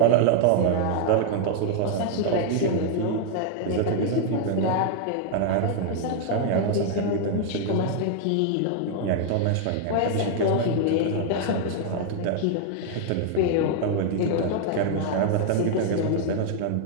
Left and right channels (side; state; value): both; different; correlation 0.00